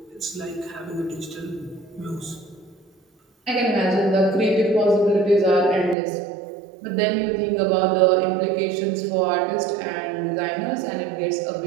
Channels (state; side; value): drops out; left; at 6.0 s